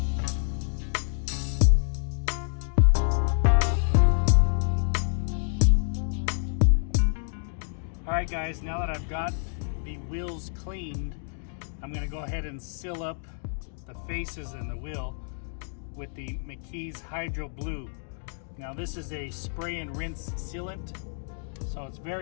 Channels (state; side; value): silent; right; digital silence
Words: Alright guys, now that I've got the wheels cleaned, I'm going to go ahead and seal up the faces in the wheel with the McKee's Hydro Blue. Now this is a spray and rinse sealant, so it's